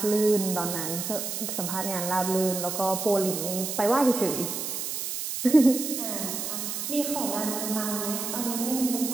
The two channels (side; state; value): right; noise; hiss, 4 dB below the sound